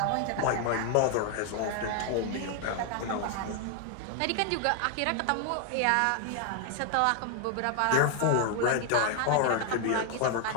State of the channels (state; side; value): different; both; correlation 0.00